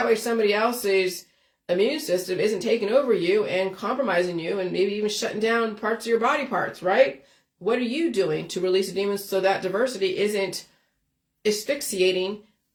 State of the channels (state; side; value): identical; both; correlation 1.00